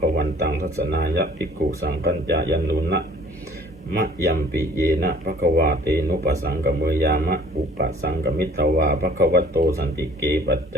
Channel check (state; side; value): normal; both; correlation 0.52